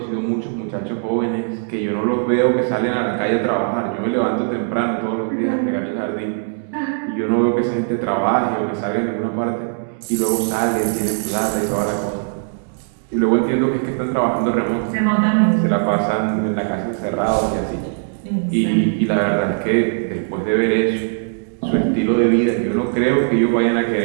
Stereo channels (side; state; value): left; silent; digital silence